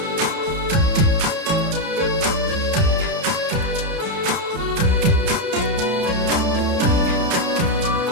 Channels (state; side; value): late; left; 31 ms